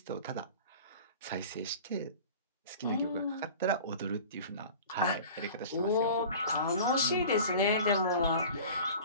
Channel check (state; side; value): inverted; both; correlation -0.40